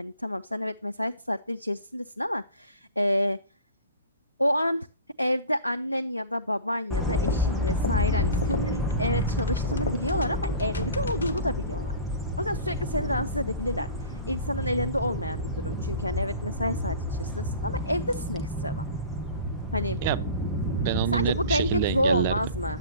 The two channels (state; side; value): inverted; both; correlation -0.41